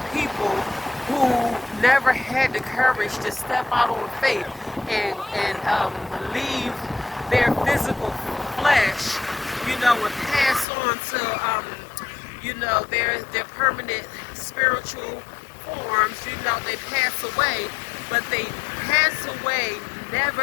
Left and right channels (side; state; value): right; drops out; at 10.7 s